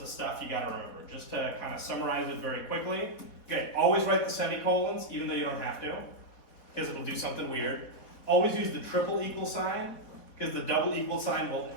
of stuff you gotta remember. Just to kind of summarize it very quickly. Okay, always write the semicolons, even though you don't have to, because it'll do something weird. Always use the triple equal sign, because the double equal sign will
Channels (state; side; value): late; right; 4.1 ms